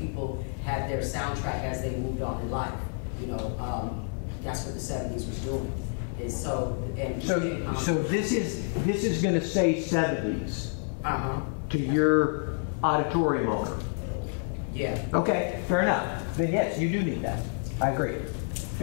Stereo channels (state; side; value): silent; right; 55 dB below the other